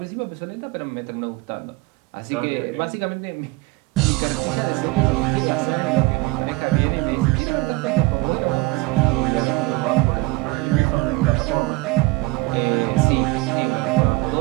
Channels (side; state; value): left; quieter; 22.0 dB